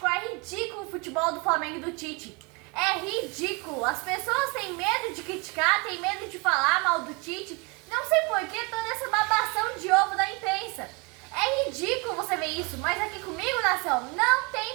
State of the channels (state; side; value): quieter; left; 29.4 dB